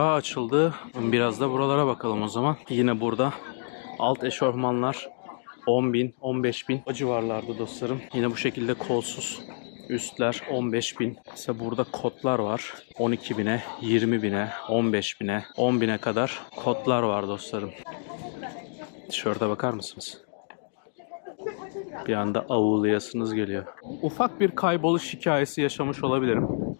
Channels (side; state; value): right; silent; digital silence